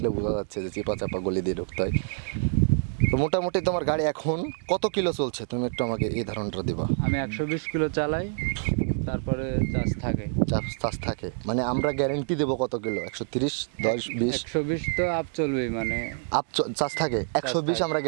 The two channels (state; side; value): silent; left; digital silence